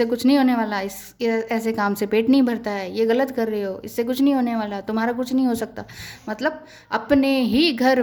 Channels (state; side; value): identical; both; correlation 1.00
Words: कुछ नहीं होने वाला, इस ऐसे काम से पेट नहीं भरता है, ये गलत कर रहे हो, इससे कुछ नहीं होने वाला, तुम्हारा कुछ नहीं हो सकता। मतलब अपने ही घर